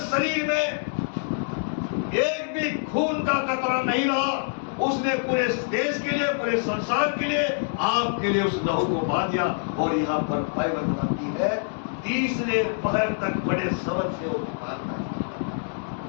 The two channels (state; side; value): silent; right; digital silence